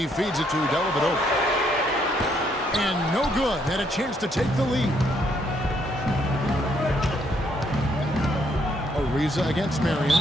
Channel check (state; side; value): normal; both; correlation 0.71